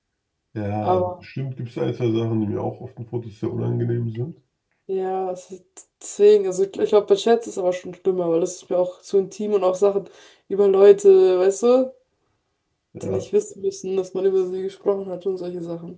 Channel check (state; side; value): identical; both; correlation 1.00